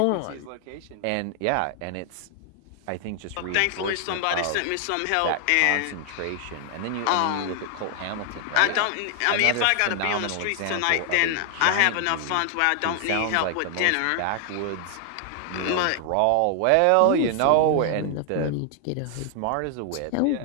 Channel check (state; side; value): different; both; correlation 0.00